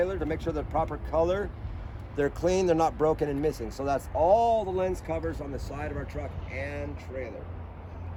to make sure they're proper color, they're clean, they're not broken and missing. So that's all the lens covers on the side of our truck and trailer.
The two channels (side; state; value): both; identical; correlation 1.00